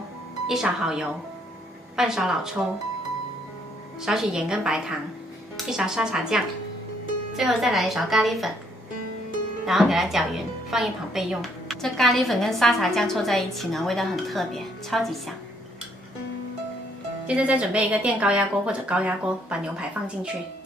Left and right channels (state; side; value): normal; both; correlation 0.68